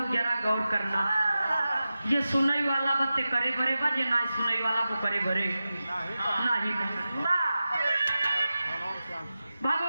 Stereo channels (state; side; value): inverted; both; correlation -0.93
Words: जरा गौर करना। ये सुनई वाला बत्ते करे भरे बा, जे ना सुनई वाला वो करे भरे नहीं।